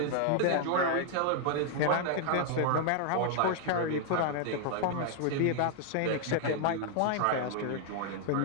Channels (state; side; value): different; both; correlation 0.00